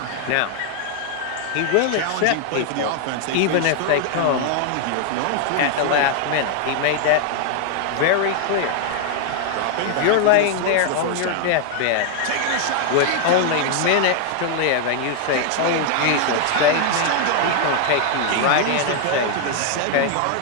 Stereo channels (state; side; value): different; both; correlation 0.00